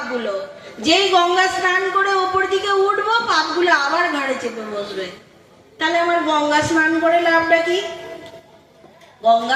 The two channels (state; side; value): identical; both; correlation 1.00